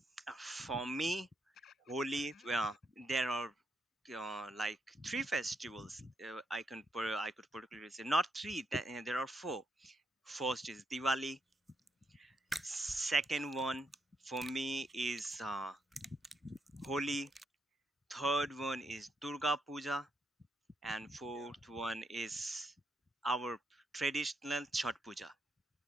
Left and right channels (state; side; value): normal; both; correlation 0.78